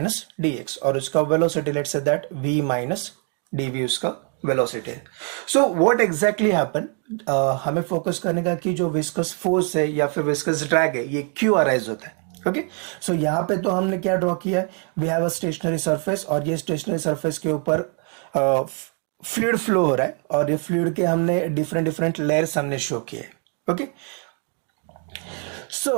और उसका velocity let's say that v minus dv उसका वेलोसिटी है. सो व्हाट एग्जैक्टली हैपन, हमें फोकस करने का कि जो विस्कस फोर्स है या फिर विस्कस ड्रैग है ये क्यों अराइज होता है. ओके, सो यहाँ पे तो हमने क्या ड्रॉ किया है, we have a stationary surface और ये स्टेशनरी सरफेस के ऊपर फ्लूइड फ्लो हो रहा है और ये फ्लूइड के हमने डिफरेंट लेयर्स हमने शो किए. ओके,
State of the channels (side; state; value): left; quieter; 38.2 dB